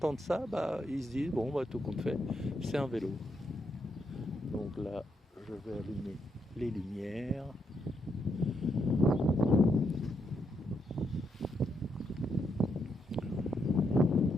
ça, ils se disent, bon, tout compte fait, c'est un vélo. Donc là, je vais allumer les lumières.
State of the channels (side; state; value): both; normal; correlation 0.79